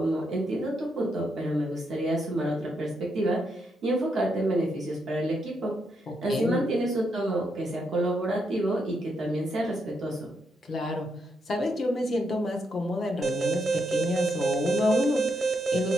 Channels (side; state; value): both; normal; correlation 0.80